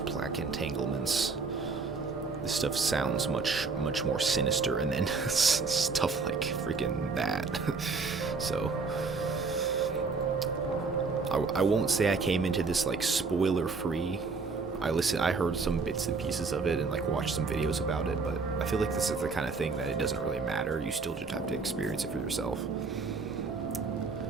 plaque entanglements. This stuff sounds much more sinister, and then stuff like freaking that. So... I won't say I came into this like spoiler free. I heard some bits and pieces of it and like watched some videos about it, but I feel like this is the kind of thing that it doesn't really matter. You still just have to experience it for yourself.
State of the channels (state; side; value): quieter; left; 4.5 dB